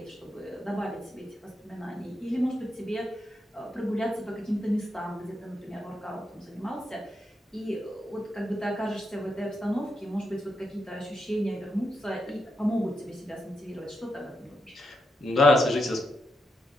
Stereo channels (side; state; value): both; normal; correlation 0.84